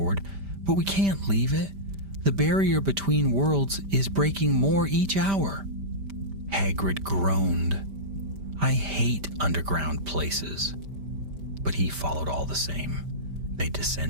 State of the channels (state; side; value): late; left; 5.1 ms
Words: "But we can't leave it. The barrier between worlds is breaking more each hour." Hagrid groaned. "I hate underground places." But he followed all the same. They